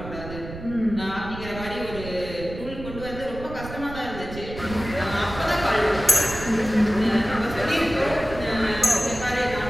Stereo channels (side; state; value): right; noise; rumble, 11 dB below the sound